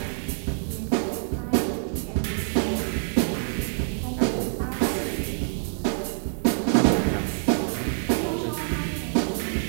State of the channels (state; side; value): silent; left; digital silence